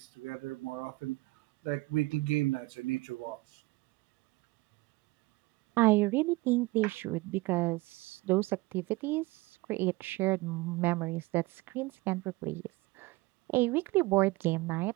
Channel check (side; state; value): left; quieter; 21.7 dB